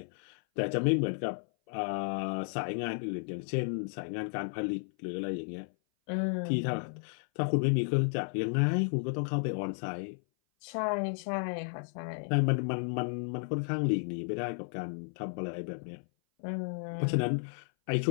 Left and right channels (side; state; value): right; silent; 56 dB below the other